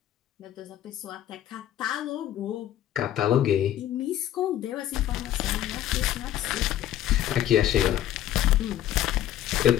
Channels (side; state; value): right; quieter; 12.1 dB